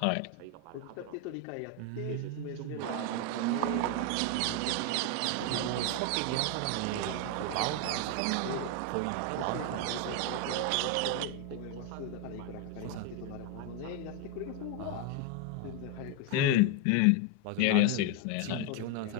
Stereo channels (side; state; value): both; different; correlation 0.01